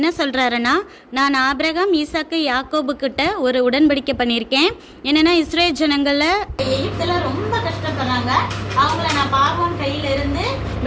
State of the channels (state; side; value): identical; both; correlation 1.00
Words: சொல்கிறாருன்னா, நான் ஆபிரகாம், ஈசாக்கு, யாக்கோபு கிட்ட ஒரு உடன்படிக்கை பண்ணியிருக்கேன். என்னென்னா, இஸ்ரேல் ஜனங்களில் எகிப்தில் ரொம்ப கஷ்டப்படுறாங்க, அவங்கள நான் பார்வோன் கையில இருந்து